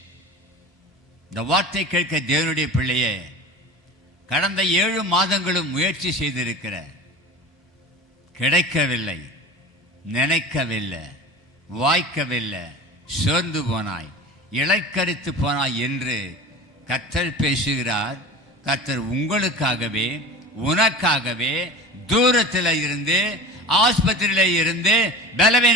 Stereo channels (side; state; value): both; normal; correlation 0.34